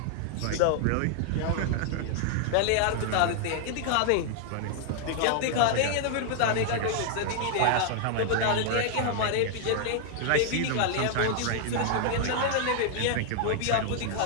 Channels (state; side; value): different; both; correlation 0.00